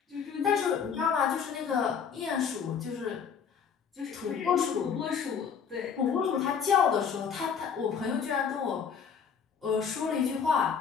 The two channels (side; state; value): right; quieter; 6.9 dB